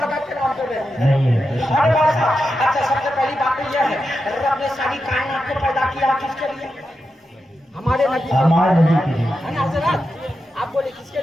के नाम पे नहीं। नहीं है। अरे बाबा, अच्छा सबसे पहली बात तो यह है, रब ने सारी कायनात को पैदा किया किसके लिए? हमारे नबी। हमारे नबी के लिए। है ना हजरत? आप बोले किसके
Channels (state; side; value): normal; both; correlation 0.89